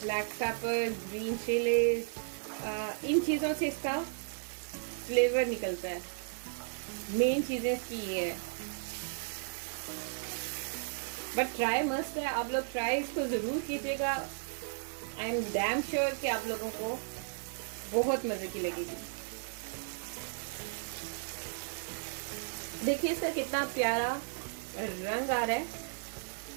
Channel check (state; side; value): silent; left; digital silence